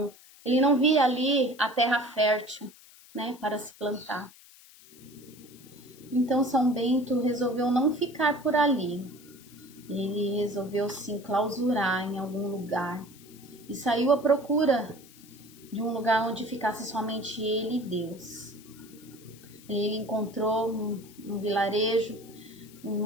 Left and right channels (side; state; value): left; noise; hiss, 23 dB below the sound